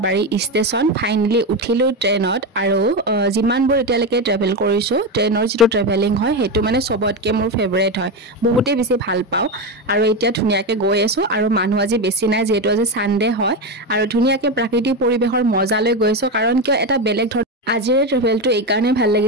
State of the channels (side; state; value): both; normal; correlation 0.14